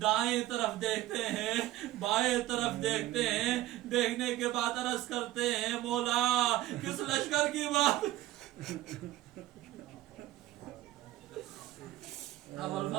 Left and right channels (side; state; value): left; quieter; 15.4 dB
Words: دائیں طرف دیکھتے ہیں, بائیں طرف دیکھتے ہیں, دیکھنے کے بعد عرض کرتے ہیں مولا کس لشکر کی بات. ابو